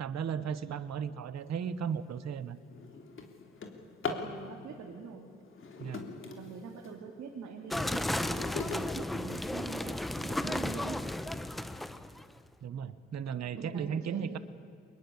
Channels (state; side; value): normal; both; correlation 0.68